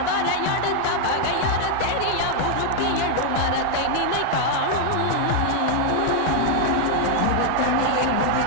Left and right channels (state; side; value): different; both; correlation 0.00